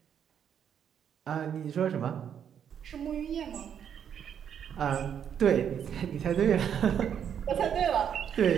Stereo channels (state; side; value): quieter; left; 8.5 dB